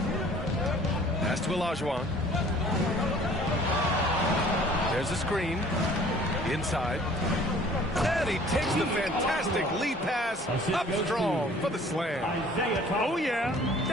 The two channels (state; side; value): normal; both; correlation 0.52